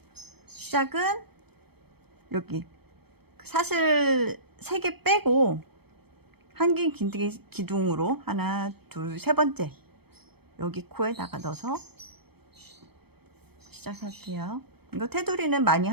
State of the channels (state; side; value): late; left; 0.97 ms